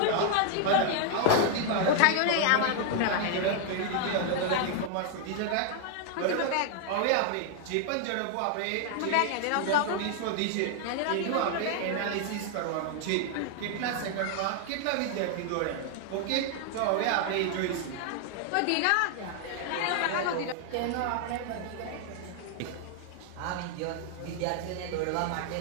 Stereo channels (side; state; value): both; different; correlation 0.00